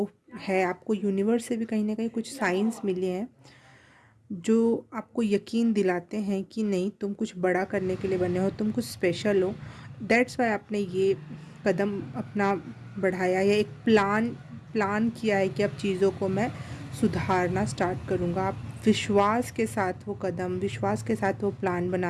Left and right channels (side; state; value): both; identical; correlation 1.00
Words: है। आपको यूनिवर्स से भी कहीं ना कहीं कुछ साइंस मिले हैं जो आपको यकीन दिलाते हैं कि नहीं, तुम कुछ बड़ा करने के लिए बने हो, तुम कुछ स्पेशल हो। दैट्स वाई आपने ये कदम अपना बढ़ाया, या एक प्लान किया है कि अब चीज़ों को मैं सुधारना स्टार्ट करूँगा। आप विश्वास के साथ वो कदम, विश्वास के साथ वो प्लान